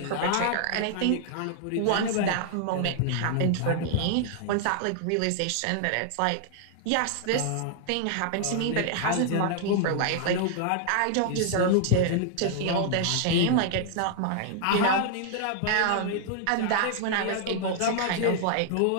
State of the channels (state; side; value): different; both; correlation -0.01